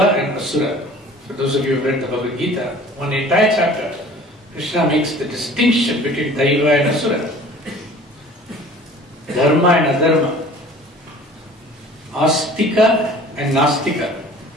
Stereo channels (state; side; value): normal; both; correlation 0.46